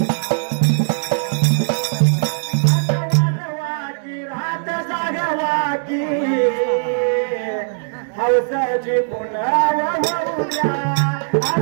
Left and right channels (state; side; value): silent; left; digital silence